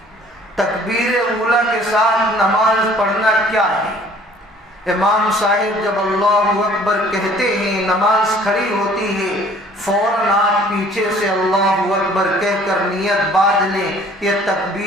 تکبیر اولیٰ کے ساتھ نماز پڑھنا کیا ہے؟ امام صاحب جب اللہ اکبر کہتے ہیں، نماز کھڑی ہوتی ہے، فوراً آپ پیچھے سے اللہ اکبر کہہ کر نیت باندھ لیں، یہ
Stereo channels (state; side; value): normal; both; correlation 0.54